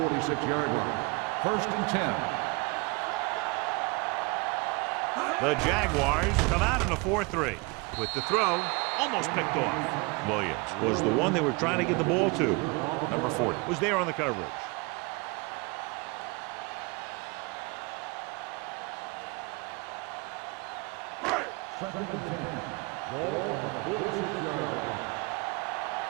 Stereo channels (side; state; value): left; quieter; 27.6 dB